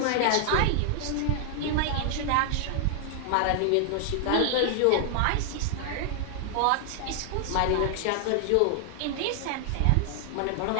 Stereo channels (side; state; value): both; different; correlation 0.00